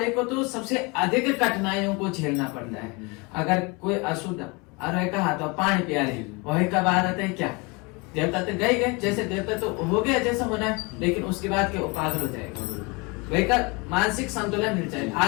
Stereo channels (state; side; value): quieter; right; 28.2 dB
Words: को तो सबसे अधिक कठिनाइयों को झेलना पड़ता है। अगर कोई अशुद्ध अरे कहा तो पानी पिया रहे, वही का बाद आता है क्या, देवता तो गए जैसे देवता तो हो गया जैसा होना है, लेकिन उसके बाद क्या पागल हो जाएगा, वही का मानसिक संतुलन मिल जाएगा।